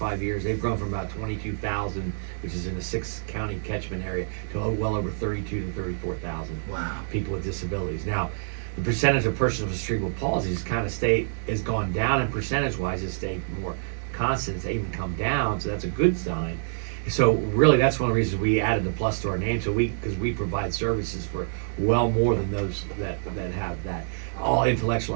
years, they've grown from about 22,000, which is in the 6-county catchment area, to well over 32 to 34,000 people with disabilities. Now, the percentage of persons with cerebral palsy has gone down, and percentage-wise, it's stayed more constant. It's even come down, so that's a good sign. So really, that's one of the reasons we added the plus to our name. So because we provide services for well more than those that have that. All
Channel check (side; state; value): left; silent; digital silence